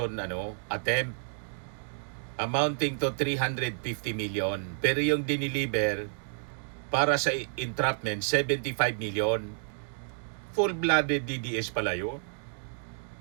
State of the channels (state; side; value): silent; left; digital silence